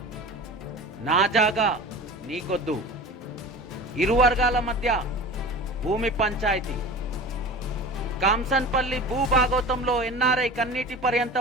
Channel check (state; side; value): normal; both; correlation 0.35